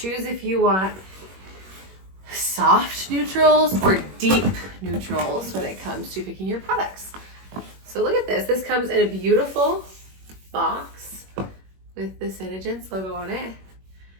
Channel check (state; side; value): late; left; 21 ms